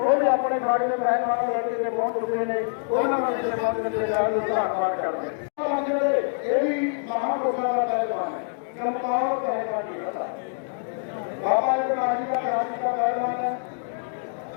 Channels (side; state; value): right; silent; digital silence